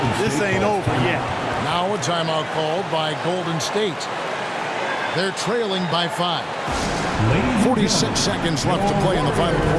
this ain't over yet. Now a timeout called by Golden State. They're trailing by 5. 46 seconds left to play in the final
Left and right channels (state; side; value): identical; both; correlation 1.00